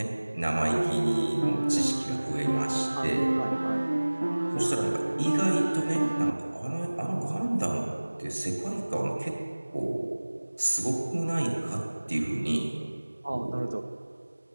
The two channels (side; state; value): both; inverted; correlation -1.00